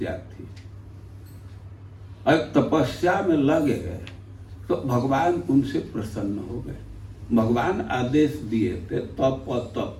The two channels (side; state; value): both; identical; correlation 1.00